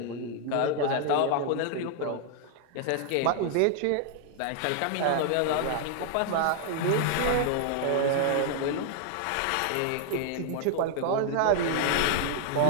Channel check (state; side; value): different; both; correlation 0.00